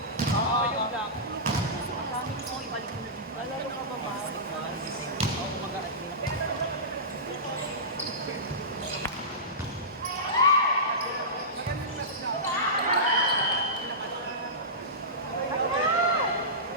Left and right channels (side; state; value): both; normal; correlation -0.18